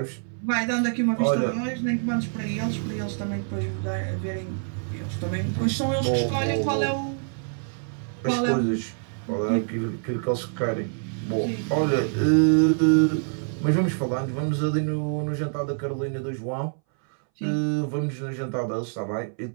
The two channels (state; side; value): silent; left; 61 dB below the other